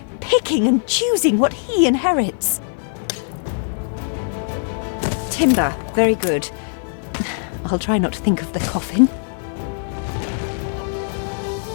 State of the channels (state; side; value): silent; right; 58 dB below the other